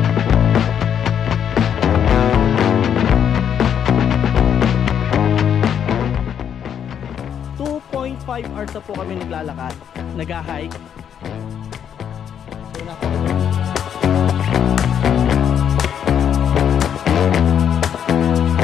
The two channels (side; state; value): right; quieter; 8.7 dB